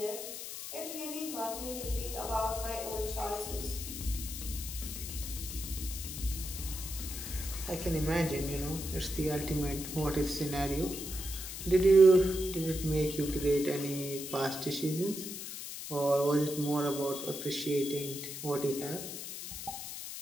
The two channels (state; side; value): noise; left; hiss, 8 dB below the sound